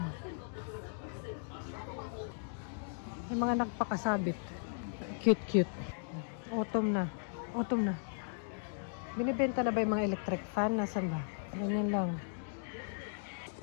May mga nagpakasabit. Cute. Autumn na. Binibenta na ba yung mga electric fan? Nasaan ba? Ganyan lang.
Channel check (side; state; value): right; silent; digital silence